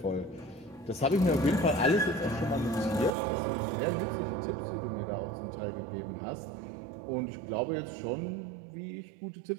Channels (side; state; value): left; drops out; at 3.2 s